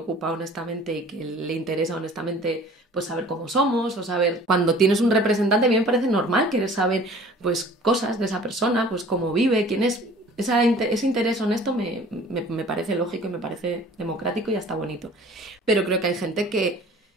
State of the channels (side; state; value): both; normal; correlation 0.48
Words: honestamente y que le interesa honestamente pues saber cómo somos o saber... Cuando tienes un representante a mí me parece normal querer saber pues cosas de esa persona, pues cómo vive, quién es... Ese interés honesto me parece lógico y me parece democrático y hasta bonito. Pero creo que hay gente que